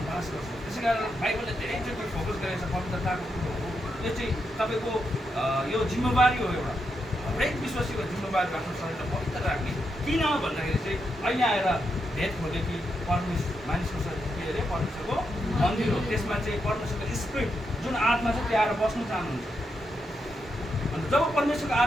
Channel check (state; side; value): normal; both; correlation 0.83